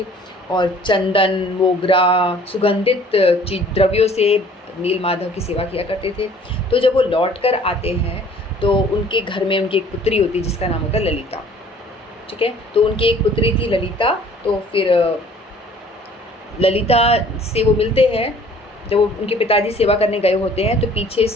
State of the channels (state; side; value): normal; both; correlation 0.53